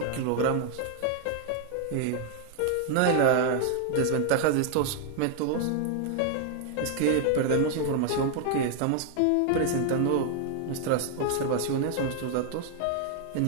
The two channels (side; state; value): both; different; correlation 0.00